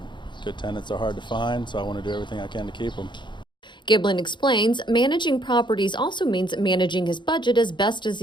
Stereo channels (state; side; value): late; right; 0.23 ms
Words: Good tenants are hard to find, so I want to do everything I can to keep them. Giblin explains managing properties also means managing his budget as best as